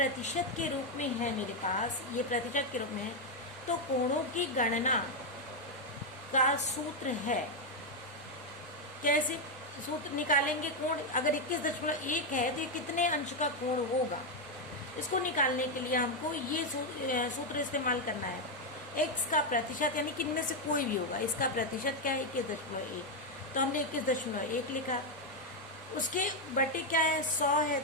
के रूप में है मेरे पास, ये प्रतिशत के रूप में है, तो कोणों की गणना का सूत्र है। कैसे सूत्र निकालेंगे? कोण अगर 21.1 है तो ये कितने अंश का कोण होगा, इसको निकालने के लिए हमको ये सूत्र इस्तेमाल करना है। x का प्रतिशत, यानी कि इनमें से कोई भी होगा, इसका प्रतिशत क्या है? 21.1। तो हमने 21.1 लिखा। उसके बटे क्या है? 100 है,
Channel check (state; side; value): normal; both; correlation 0.03